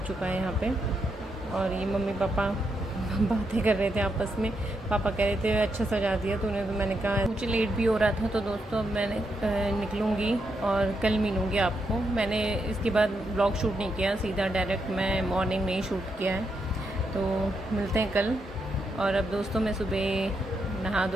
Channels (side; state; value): both; normal; correlation 0.82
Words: चुका है यहाँ पे। और ये मम्मी पापा बातें कर रहे थे आपस में। पापा कह रहे थे अच्छा सजा दिया तूने, तो मैंने कहा मुझे लेट भी हो रहा था। तो दोस्तों, अब मैंने निकलूँगी और कल मिलूँगी आपको। मैंने इसके बाद ब्लॉग शूट नहीं किया, सीधा डायरेक्ट मैं मॉर्निंग में ही शूट किया है। तो मिलते हैं कल। और अब दोस्तों, मैं सुबह नहा